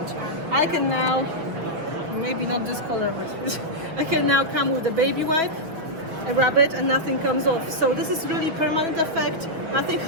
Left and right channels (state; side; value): late; left; 6.2 ms